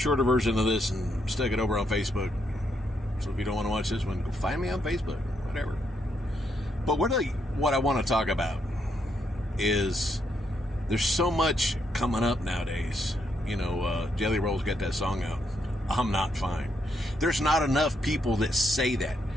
version of this and stuck it over on Facebook. So if you don't want to watch this one, go find me on Facebook, whatever. But what I want to talk about is there's so much coming up nowadays. You know, Jelly Roll's got that song out, I'm Not Fine. There's not enough people that say that.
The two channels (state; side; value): normal; both; correlation 0.77